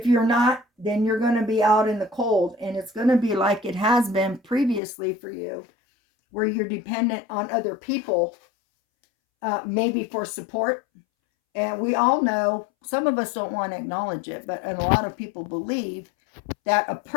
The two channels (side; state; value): right; drops out; at 4.8 s